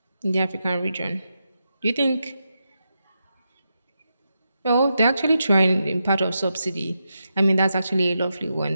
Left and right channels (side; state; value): both; inverted; correlation -0.86